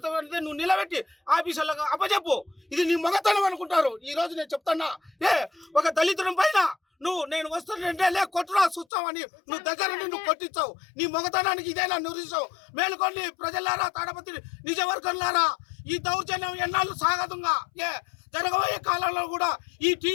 నువ్వు నిలబెట్టి ఆఫీసర్లకు అప్పచెప్పు. ఇది నీ మగతనం అనుకుంటారు. ఈరోజు నేను చెప్తున్నా, ఒక దళితుడి పైన నేను వస్తుంటే కొట్టురా చూస్తావని నువ్వు దగ్గర నువ్వు కొట్టించావు. నీ మొగతనానికి ఇదేనా నిరూపించావు? మేలుకోండి ప్రజలారా, తాడపత్రి నిజవర్గంలారా, ఈ దౌర్జన్యం ఎన్నాళ్ళు సాగదుగా జరగబోయే కాలంలో కూడా ఈ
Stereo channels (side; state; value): right; drops out; at 8.8 s